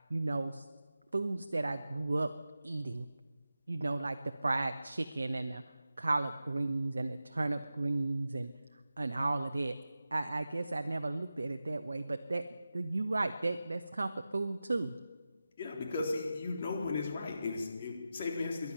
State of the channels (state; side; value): inverted; both; correlation -0.93